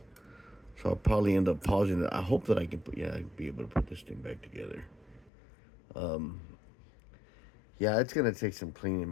So I'll probably end up pausing it. I hope that I can be able to put this thing back together. Yeah, it's gonna take some cleaning,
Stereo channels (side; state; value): right; drops out; at 5.3 s